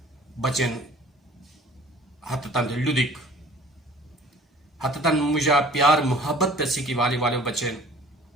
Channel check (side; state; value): both; normal; correlation 0.49